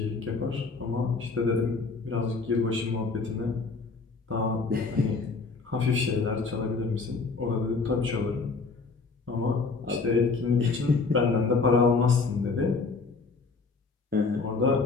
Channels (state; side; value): quieter; right; 4.3 dB